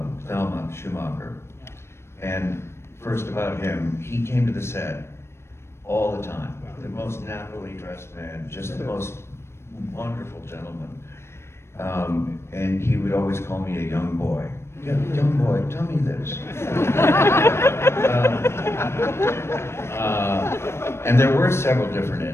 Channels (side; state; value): right; late; 0.12 ms